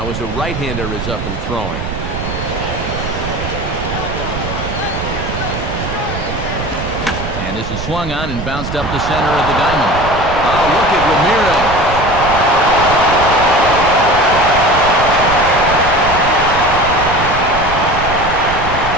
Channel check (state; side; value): noise; right; rumble, 7 dB below the sound